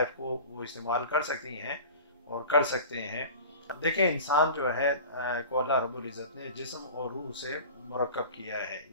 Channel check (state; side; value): inverted; both; correlation -0.37